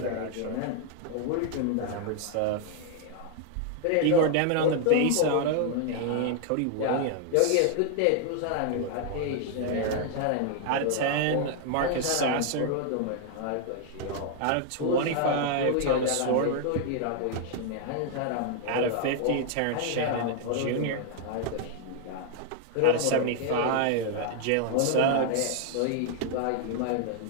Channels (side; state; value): both; different; correlation 0.00